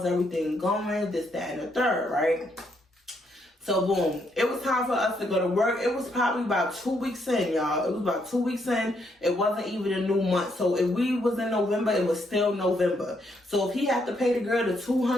everything going? This, that, and the third, right? So boom, it was time for us to go to work. It was probably about 2 weeks in, y'all. It was about 2 weeks in. It wasn't even a new month. So if we was in November, it was still November. So if he had to pay the girl the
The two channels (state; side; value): normal; both; correlation 0.75